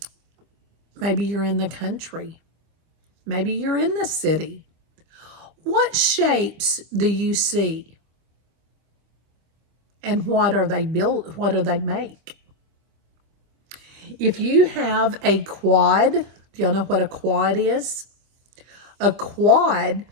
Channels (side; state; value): left; late; 25 ms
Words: maybe you're in the country, maybe you're in the city. What shapes do you see? And what are they built? What do they make? If you have a quad, do y'all know what a quad is? A quad